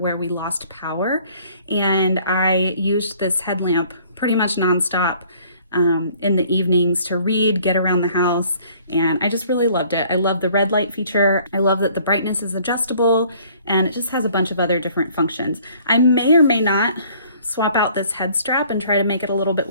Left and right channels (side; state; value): both; inverted; correlation -0.57